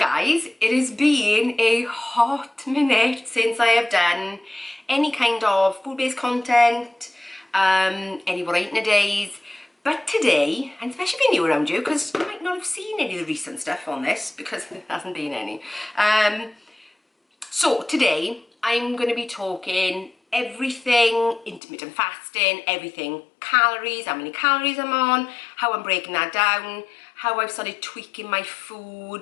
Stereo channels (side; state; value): right; drops out; at 21.6 s